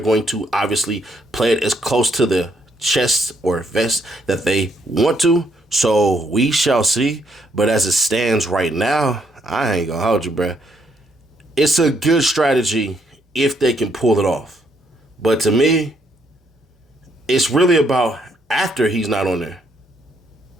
to obviously play it as close to the chest or vest that they want to. So we shall see. But as it stands right now, I ain't gonna hold you, bruh. It's a good strategy if they can pull it off. But to me, it's really about after he's not on there.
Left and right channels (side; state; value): both; normal; correlation 0.72